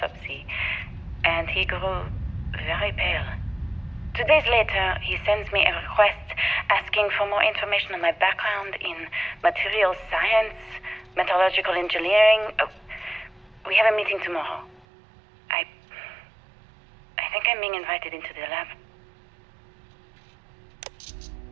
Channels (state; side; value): drops out; left; at 14.9 s